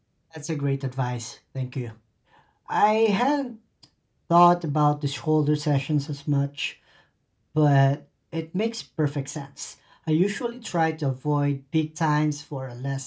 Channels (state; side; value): identical; both; correlation 1.00